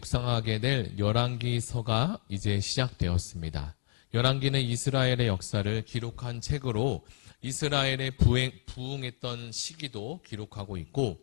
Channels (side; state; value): right; silent; 57 dB below the other